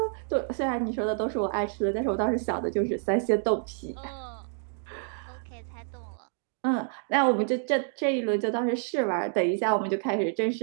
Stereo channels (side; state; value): left; silent; digital silence